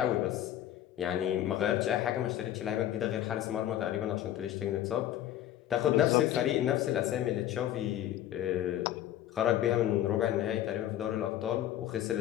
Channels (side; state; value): right; quieter; 12.3 dB